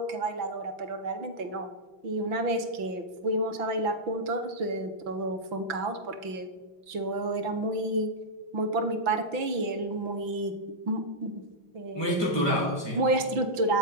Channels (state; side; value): late; left; 6.0 ms